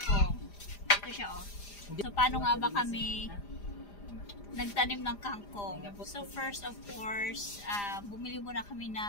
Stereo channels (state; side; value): late; right; 4.9 ms